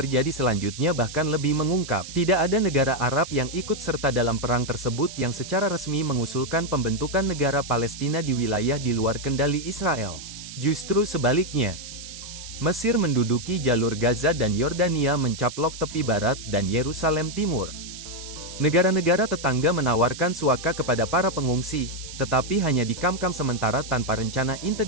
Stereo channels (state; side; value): noise; right; hiss, 12 dB below the sound